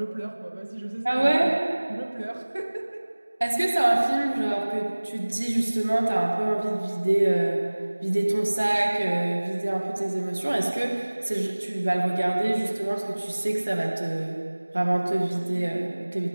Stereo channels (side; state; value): both; inverted; correlation -1.00